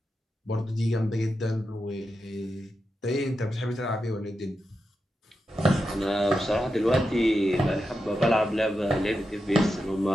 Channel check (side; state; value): both; normal; correlation 0.88